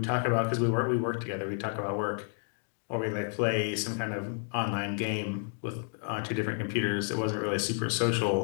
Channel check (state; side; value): silent; right; 57 dB below the other